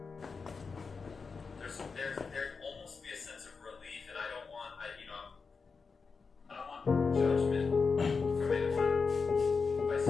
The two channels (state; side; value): quieter; right; 4.9 dB